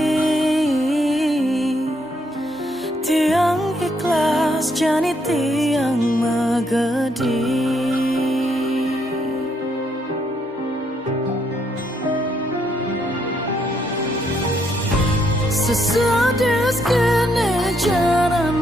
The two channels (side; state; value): both; normal; correlation 0.74